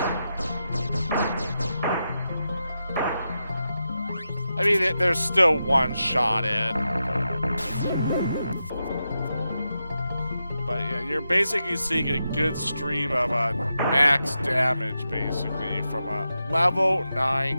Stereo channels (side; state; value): both; inverted; correlation -0.88